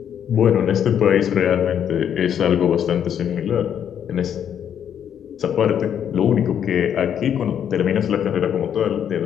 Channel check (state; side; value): quieter; right; 9.0 dB